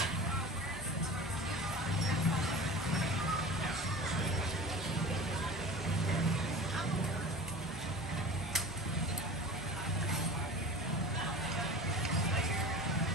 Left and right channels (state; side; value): normal; both; correlation 0.36